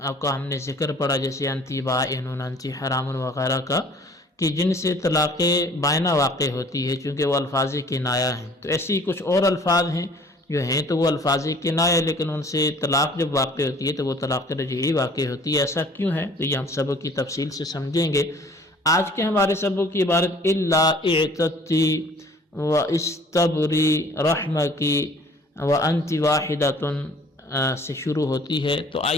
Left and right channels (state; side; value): normal; both; correlation 0.53